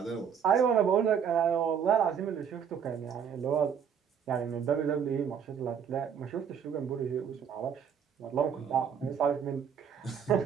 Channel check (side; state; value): left; quieter; 7.7 dB